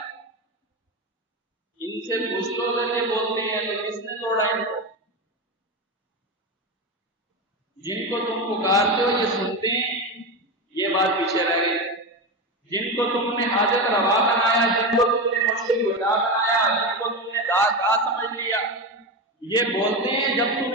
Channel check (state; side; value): normal; both; correlation 0.18